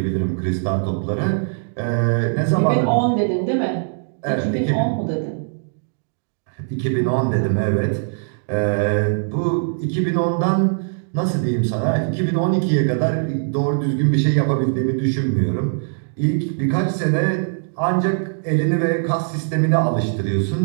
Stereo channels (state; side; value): silent; left; digital silence